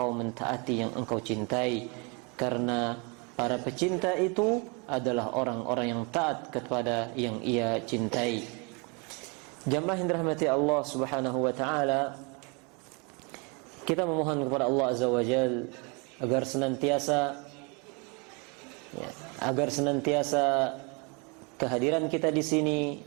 mentaati yang engkau cintai, karena para pecinta itu adalah orang-orang yang taat kepada yang ia cintai. Jamaah yang dirahmati Allah Subhanahu wa taala, kita memohon kepada Allah Azza wa Jalla agar senantiasa kehadiran kita di sini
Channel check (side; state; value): left; quieter; 32.3 dB